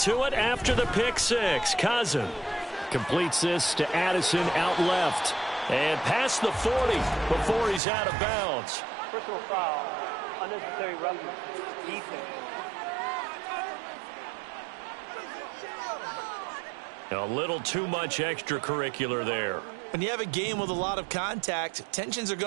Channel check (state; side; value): drops out; left; at 7.8 s